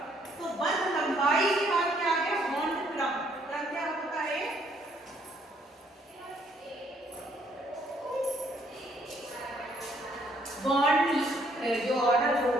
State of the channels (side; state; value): both; normal; correlation 0.67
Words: तो बंध लंबाई के बाद क्या आ गया, बॉन्ड क्रम। क्रम क्या होता है, बॉन्ड जो ऑर्डर वो